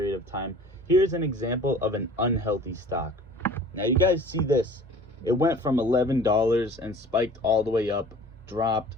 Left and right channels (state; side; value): normal; both; correlation 0.46